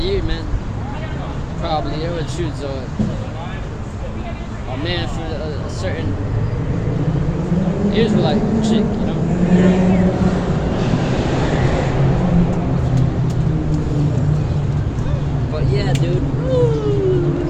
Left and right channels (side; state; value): both; identical; correlation 1.00